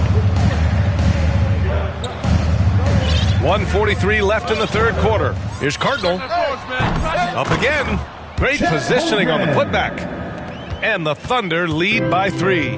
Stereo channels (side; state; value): both; identical; correlation 1.00